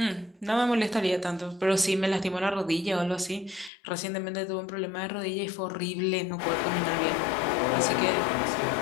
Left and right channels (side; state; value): right; drops out; at 3.7 s